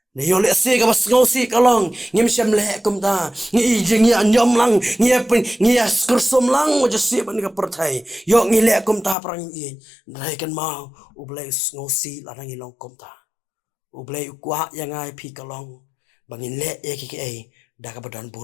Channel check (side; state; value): right; drops out; at 9.2 s